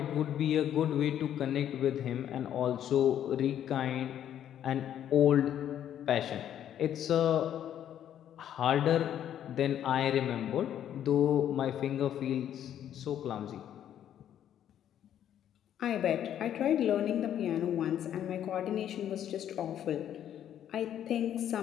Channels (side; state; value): right; quieter; 10.4 dB